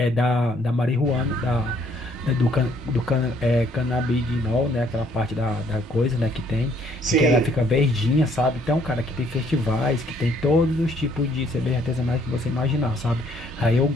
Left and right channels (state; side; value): normal; both; correlation 0.65